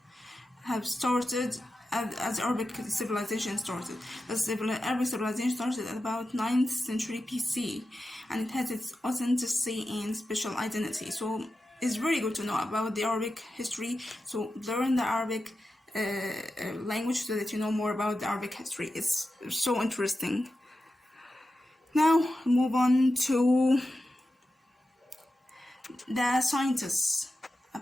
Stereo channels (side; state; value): both; normal; correlation 0.91